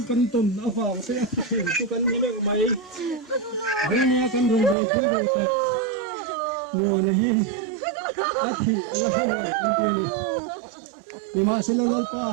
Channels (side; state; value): left; drops out; at 4.8 s